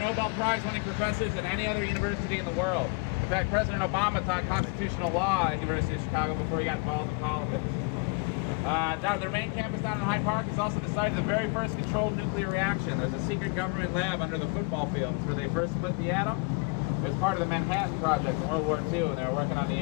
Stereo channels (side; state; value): right; quieter; 30.4 dB